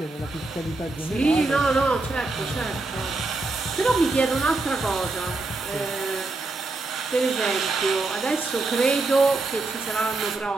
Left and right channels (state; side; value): quieter; left; 3.3 dB